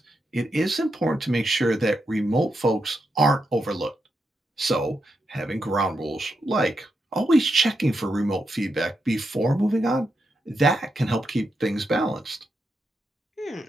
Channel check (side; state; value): both; normal; correlation 0.84